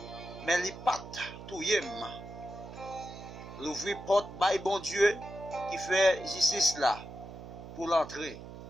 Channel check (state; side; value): noise; right; hum, 13 dB below the sound